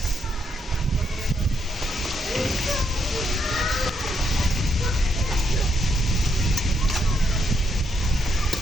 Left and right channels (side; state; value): both; normal; correlation 0.77